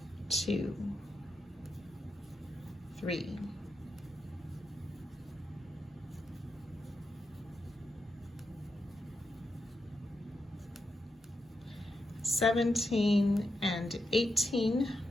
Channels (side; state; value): both; normal; correlation 0.86